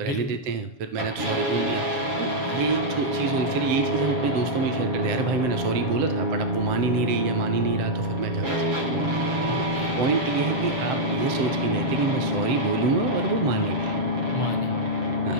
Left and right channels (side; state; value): left; late; 7.3 ms